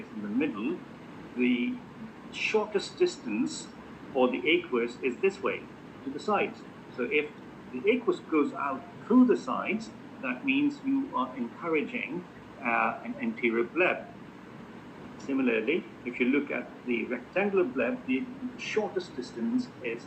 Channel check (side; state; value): both; identical; correlation 1.00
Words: in the middle, the shortest distance for the aqueous is this way, to the sides. So if the aqueous goes out through the sides, that means you are encouraging an anterior bleb. Similarly, if you look at the rectangular bleb, the shortest distance is